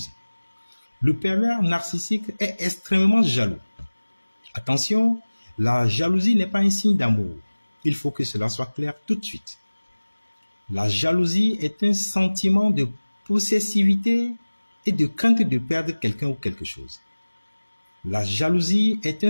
Le pervers narcissique est extrêmement jaloux. Attention, la jalousie n'est pas un signe d'amour. Il faut que cela soit clair tout de suite. La jalousie est un sentiment de possessivité et de crainte de perdre quelqu'un ou quelque chose. La jalousie est un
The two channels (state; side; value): inverted; both; correlation -1.00